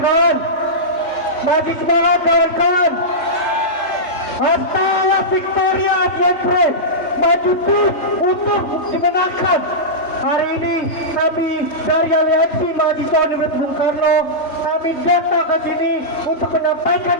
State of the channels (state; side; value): late; right; 3.2 ms